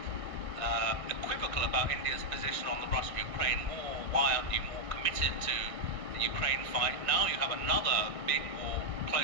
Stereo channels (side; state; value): left; late; 1.6 ms